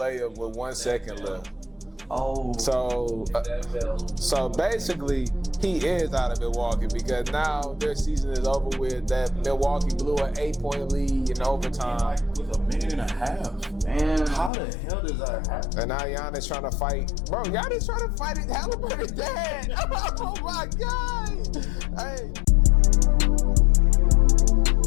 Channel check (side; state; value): right; drops out; at 14.5 s